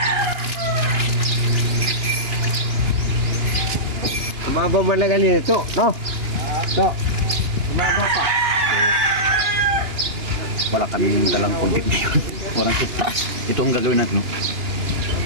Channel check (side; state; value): left; late; 2.9 ms